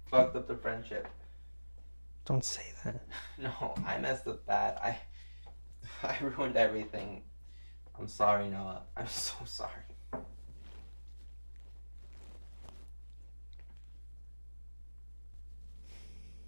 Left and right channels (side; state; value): both; inverted; correlation -1.00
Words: fucked up the friendship. Don't say that. No, I messed up bad. I ruined everything. I'm sorry, Noah. I'm so sorry.